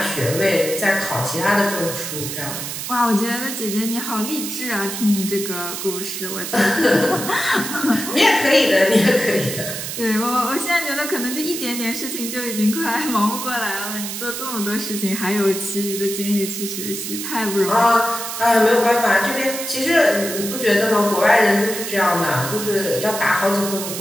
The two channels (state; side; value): noise; right; hiss, 6 dB below the sound